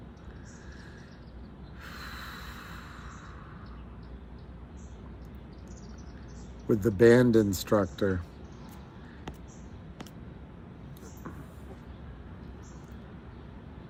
With the band instructor.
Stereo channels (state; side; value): identical; both; correlation 1.00